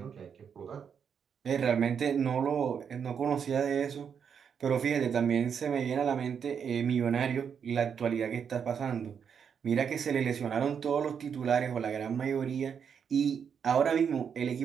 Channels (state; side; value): quieter; left; 7.2 dB